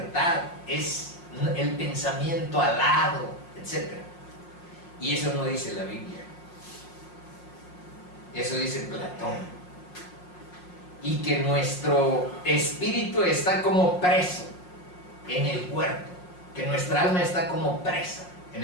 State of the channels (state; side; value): late; right; 5.6 ms